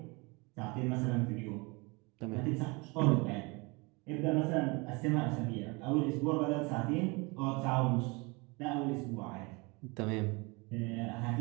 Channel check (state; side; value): quieter; left; 27.4 dB